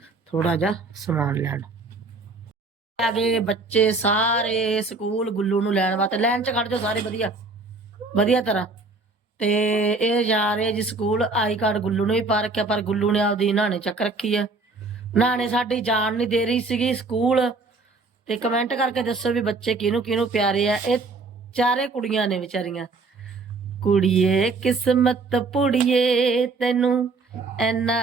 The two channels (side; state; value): left; quieter; 3.8 dB